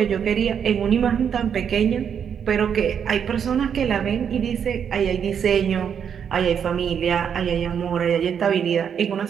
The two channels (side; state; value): left; quieter; 7.8 dB